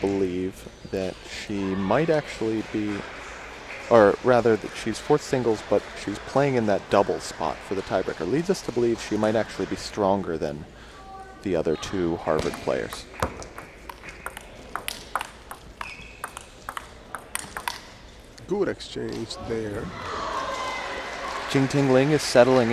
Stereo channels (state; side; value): identical; both; correlation 1.00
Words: that she might actually be, or rather that she's 4th singles, but she's playing in that double spot for the tiebreaker. Leads us to believe she might actually be stronger than the other 2 Harvard players. Good exchange there. Jingting Ling is settling